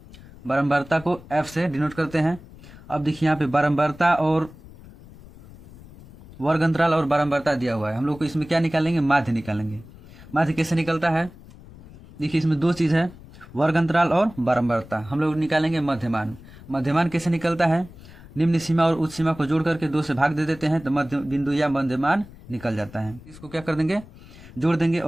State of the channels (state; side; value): noise; left; rumble, 20 dB below the sound